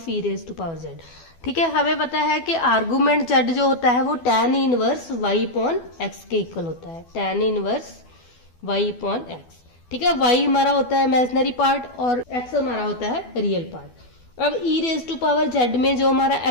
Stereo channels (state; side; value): late; right; 12 ms